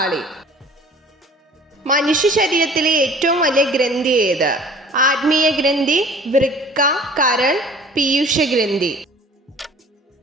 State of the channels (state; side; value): normal; both; correlation 0.48